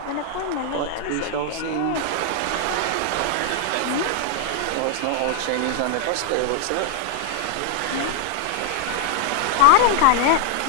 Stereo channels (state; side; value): different; both; correlation 0.00